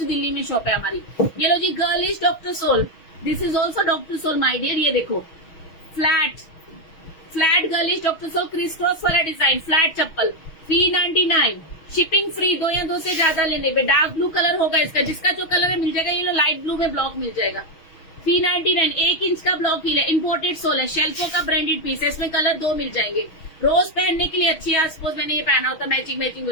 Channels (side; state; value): right; late; 6.3 ms